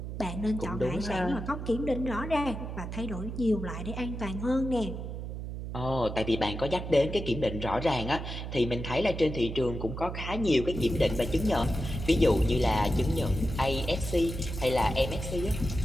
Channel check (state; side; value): noise; right; hum, 6 dB below the sound